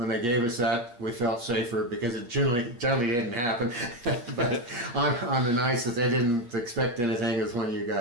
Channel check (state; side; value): late; left; 8.5 ms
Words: they gave us that, we felt safer because it generally didn't happen. But on the nights that they didn't expect anything is when you